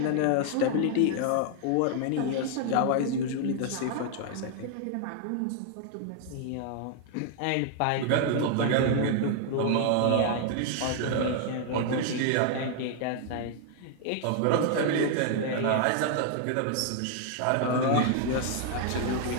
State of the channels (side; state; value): both; different; correlation 0.00